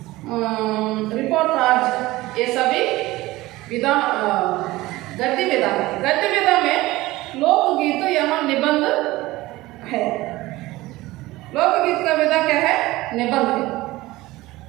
रिपोर्टाज, ये सभी विधा गद्य विधा है. गद्य विधा में लोकगीत यहाँ निबंध है. लोकगीत का विधा क्या है? निबंध है.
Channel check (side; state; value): left; quieter; 18.7 dB